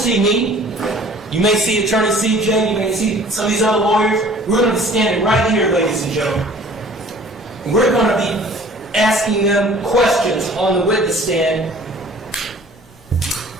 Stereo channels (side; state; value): both; normal; correlation 0.50